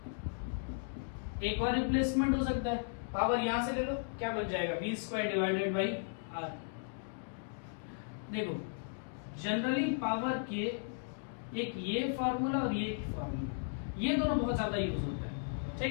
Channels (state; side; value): silent; right; digital silence